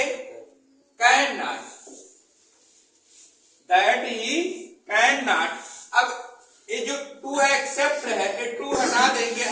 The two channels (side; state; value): both; identical; correlation 1.00